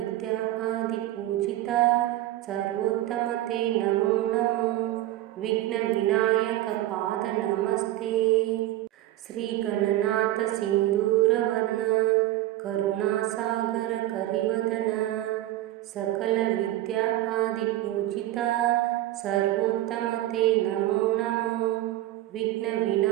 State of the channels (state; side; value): quieter; left; 15.1 dB